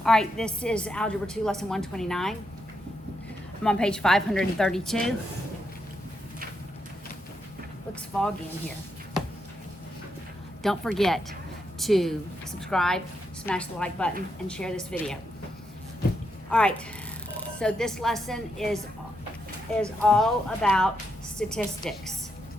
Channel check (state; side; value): normal; both; correlation 0.82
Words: All right, this is Algebra 2, Lesson 129. I'm on page 532. Looks foggy in here. Don't forget to subscribe, smash the like button, and share this video. All right, so this lesson is all about statistics.